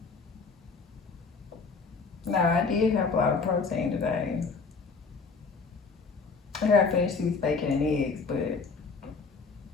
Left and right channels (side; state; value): right; quieter; 4.6 dB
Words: No, I did have a lot of protein today. I gotta finish these bacon and eggs, but